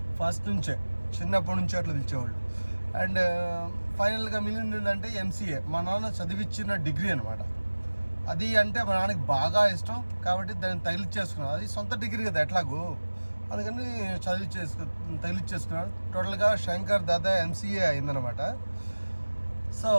ఫస్ట్ నుంచే చిన్నప్పటి నుంచి అట్లా పిలిచేవాళ్ళు. అండ్ ఫైనల్గా మిగిలిందంటే ఎంసీఏ, మా నాన్న చదివిచ్చిన డిగ్రీ అనమాట. అది అంటే మా నాన్నకి బాగా ఇష్టం కాబట్టి దాన్ని తగిలిచ్చేసుకున్నాను. అది సొంత డిగ్రీ కదా ఎట్లాగూ, అందుకని తగిలిచ్చేసుకున్నాను. టోటల్గా శంకర్ దాదా ఎంసీఏ అయిందనమాట. సో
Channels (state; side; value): inverted; both; correlation -1.00